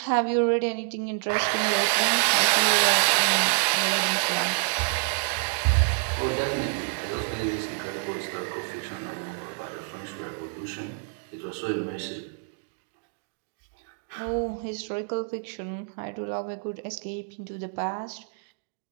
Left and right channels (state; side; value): silent; left; 60 dB below the other